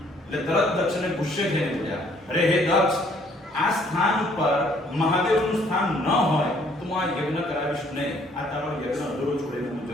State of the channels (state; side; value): normal; both; correlation 0.63